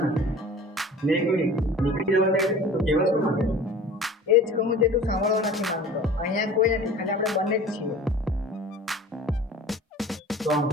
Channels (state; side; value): normal; both; correlation 0.42